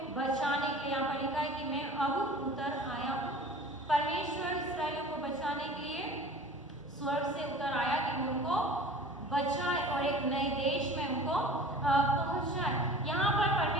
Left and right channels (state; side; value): normal; both; correlation 0.42